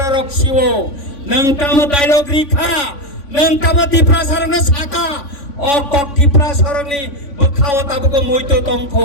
Siwo, Nang Tamo Dialog Rikha, Nang Tamo Tipra Sarana Saka, Okok Tipra Sarani, Bukhawa Tabuko Muito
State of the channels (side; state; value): right; late; 3.5 ms